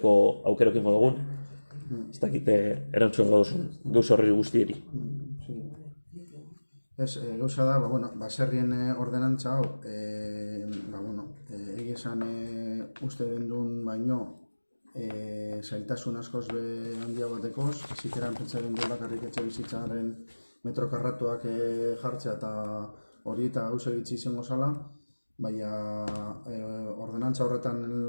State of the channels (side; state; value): both; inverted; correlation -1.00